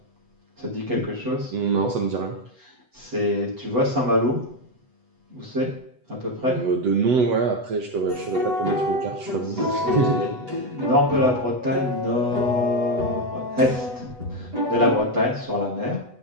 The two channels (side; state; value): left; late; 8.0 ms